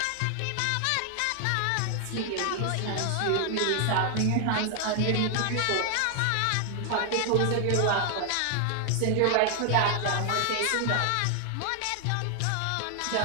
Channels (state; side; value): different; both; correlation 0.00